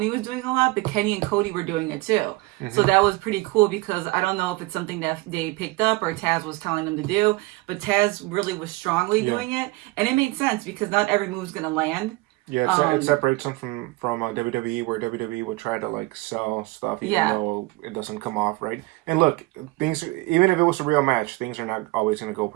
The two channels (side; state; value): left; quieter; 21.1 dB